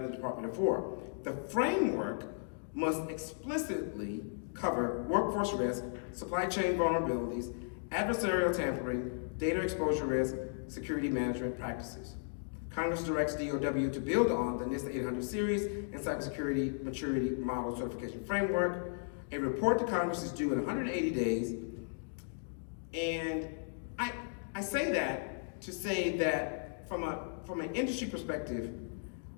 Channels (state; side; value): silent; right; digital silence